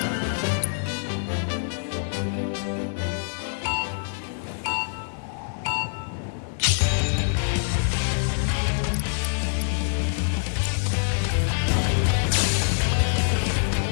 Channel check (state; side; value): silent; right; 62 dB below the other